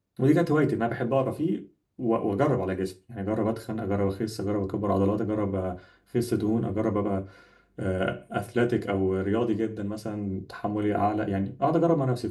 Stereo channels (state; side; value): identical; both; correlation 1.00